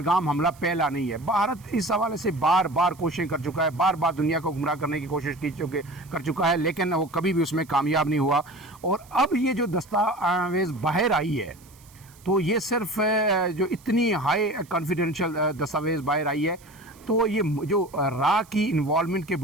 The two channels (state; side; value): noise; right; hiss, 26 dB below the sound